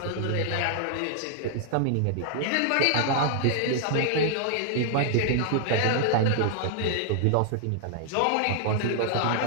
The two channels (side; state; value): both; different; correlation 0.00